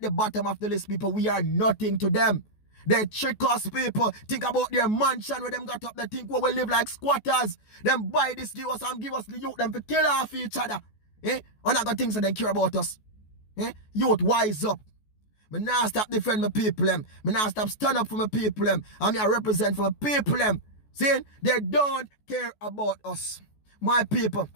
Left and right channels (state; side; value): late; right; 14 ms